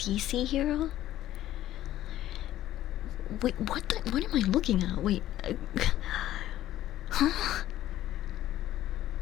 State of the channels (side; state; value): right; quieter; 13.5 dB